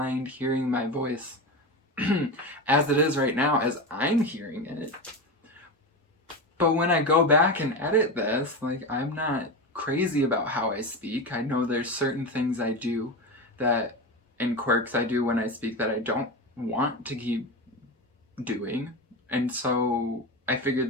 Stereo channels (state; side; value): normal; both; correlation 0.21